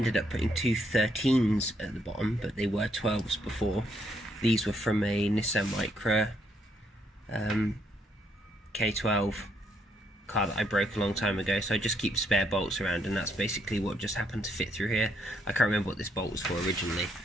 up putting two 13s at the bottom, but they were 12s before. These were from a Nissan Micra K12 car that I broke a long time ago, so I just keep spare bolts around, and that's basically what just happened to fit through here. I can't remember what this bolt was for originally,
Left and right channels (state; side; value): normal; both; correlation 0.73